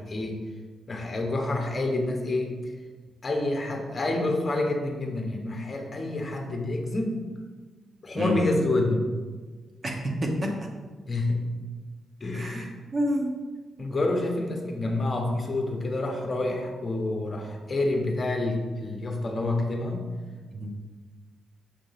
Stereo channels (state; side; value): normal; both; correlation 0.86